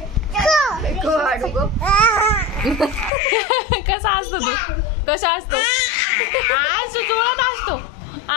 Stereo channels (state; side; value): drops out; right; at 3.1 s